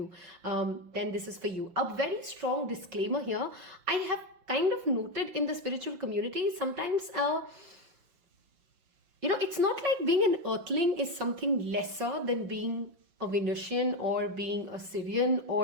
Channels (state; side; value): late; left; 5.7 ms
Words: then this is for you. A very strong disclaimer here. I have kind of noted in the spiritual community sometimes, it's not like being an earthling is something lesser than being a Venusian or being a Syrian